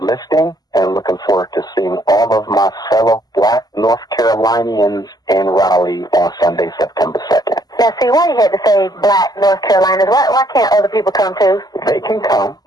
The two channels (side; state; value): right; late; 0.19 ms